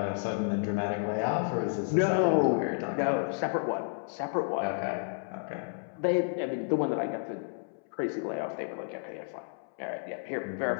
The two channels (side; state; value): right; silent; 57 dB below the other